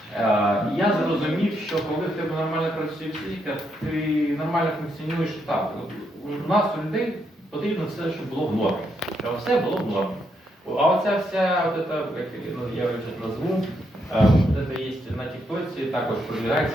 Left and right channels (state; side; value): normal; both; correlation 0.78